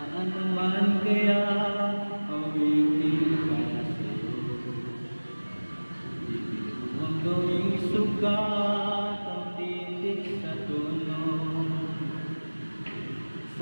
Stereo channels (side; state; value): both; inverted; correlation -1.00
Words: naman kaya awitin para sa'yo? Ibig mo ang gawing sugat ang titik sa tono.